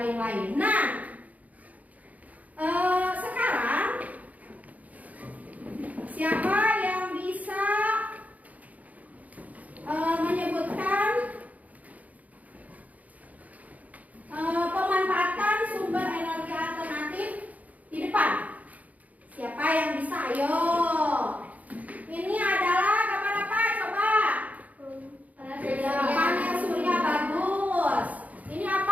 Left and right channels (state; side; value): late; left; 0.074 ms